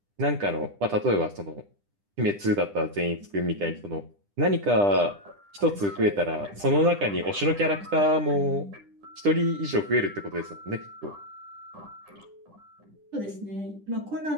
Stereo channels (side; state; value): left; late; 10 ms